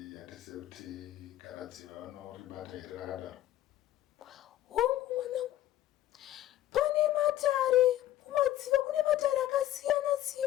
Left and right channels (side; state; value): right; quieter; 13.6 dB